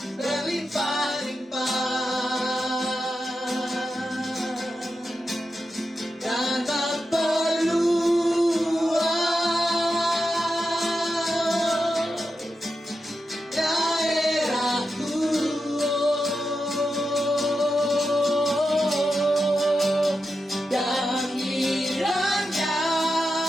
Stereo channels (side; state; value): both; normal; correlation 0.89